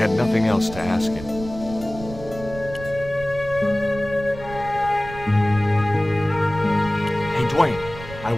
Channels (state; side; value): noise; right; rumble, 13 dB below the sound